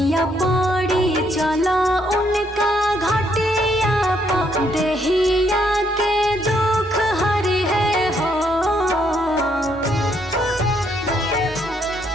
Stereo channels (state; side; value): normal; both; correlation 0.72